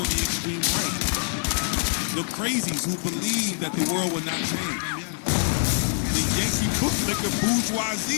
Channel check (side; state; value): right; silent; 57 dB below the other